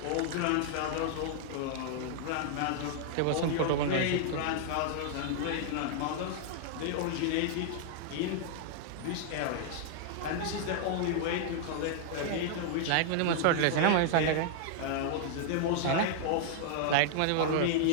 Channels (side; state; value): both; different; correlation 0.00